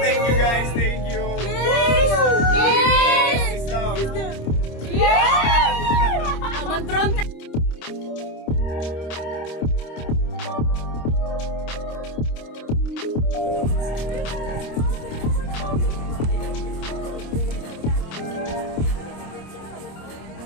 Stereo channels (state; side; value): late; right; 26 ms